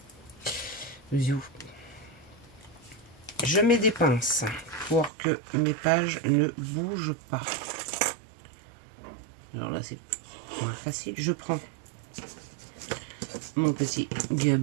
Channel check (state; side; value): drops out; left; at 5.1 s